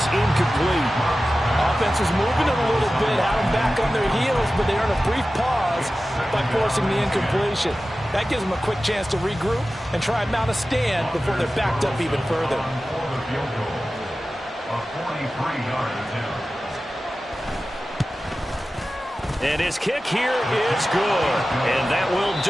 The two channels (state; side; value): normal; both; correlation 0.95